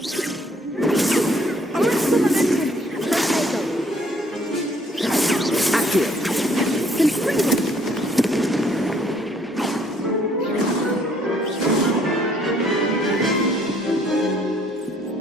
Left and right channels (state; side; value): normal; both; correlation 0.63